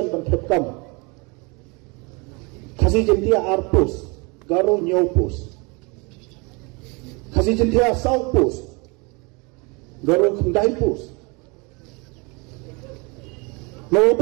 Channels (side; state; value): left; quieter; 29.0 dB